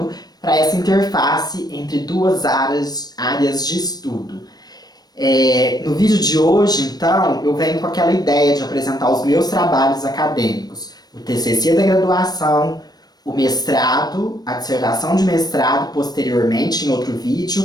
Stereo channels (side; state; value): right; late; 0.19 ms